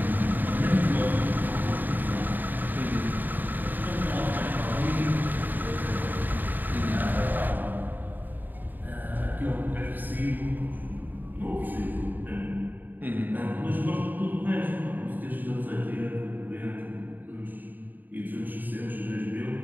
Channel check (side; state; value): left; late; 0.088 ms